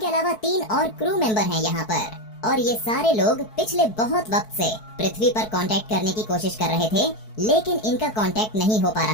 अलावा 3 और क्रू मेंबर हैं यहाँ पर। और ये सारे लोग पिछले बहुत वक्त से पृथ्वी पर कांटेक्ट करने की कोशिश कर रहे थे, लेकिन इनका कांटेक्ट नहीं हो पा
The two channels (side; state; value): right; late; 4.6 ms